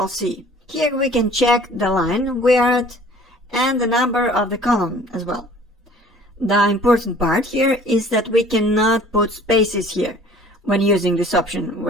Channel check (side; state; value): both; normal; correlation 0.51